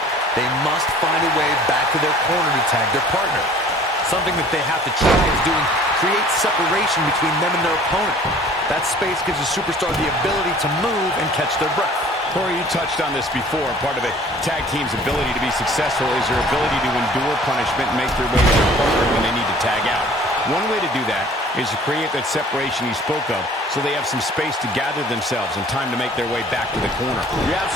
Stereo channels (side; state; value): both; normal; correlation 0.50